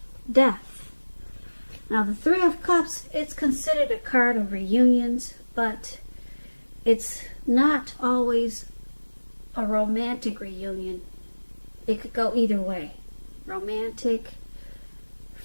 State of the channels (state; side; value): inverted; both; correlation -1.00